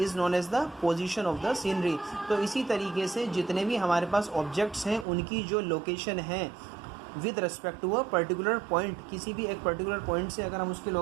known as the position of the scenery. तो इसी तरीके से जितने भी हमारे पास ऑब्जेक्ट्स हैं उनकी जो लोकेशन है with respect to a particular point, किसी भी एक पर्टिकुलर पॉइंट से अगर हम उसकी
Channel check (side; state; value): left; drops out; at 5.1 s